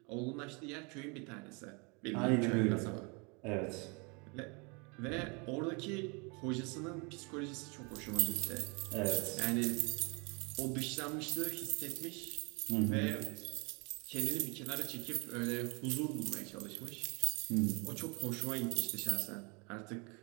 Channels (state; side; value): quieter; left; 31.5 dB